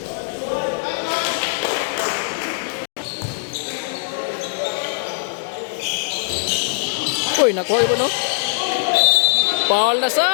Uy, nakuha yun, no? Foul na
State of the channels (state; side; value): silent; right; digital silence